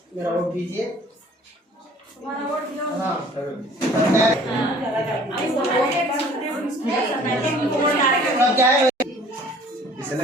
मेरा वोट दीजिए। हाँ क्या है इस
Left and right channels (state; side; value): normal; both; correlation 0.51